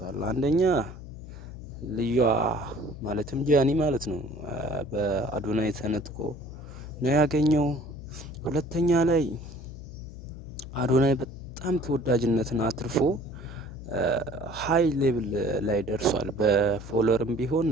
አንደኛ ልዩዋ ማለትም ጃኒ ማለት ነው በአዶናይ ተነጥቆ ነው ያገኘው። ሁለተኛ ላይ አዶናይ በጣም ተወዳጅነትን አትርፎ ሃይ ሌቭል ላይ ደርሷል። በፎሎወርም ቢሆን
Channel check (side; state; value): left; noise; hum, 13 dB below the sound